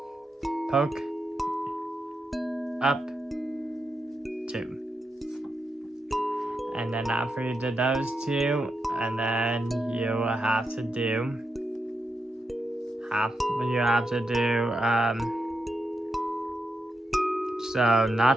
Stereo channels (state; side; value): normal; both; correlation 0.86